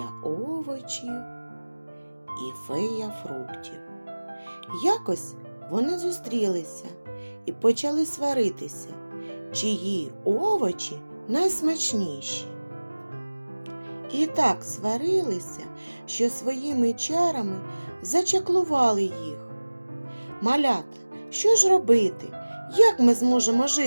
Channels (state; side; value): inverted; both; correlation -1.00